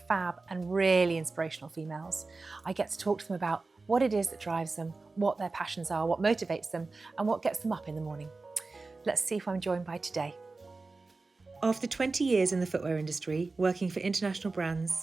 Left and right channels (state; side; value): quieter; left; 3.7 dB